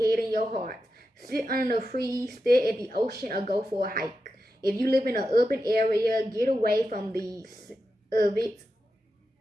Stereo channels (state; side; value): normal; both; correlation 0.89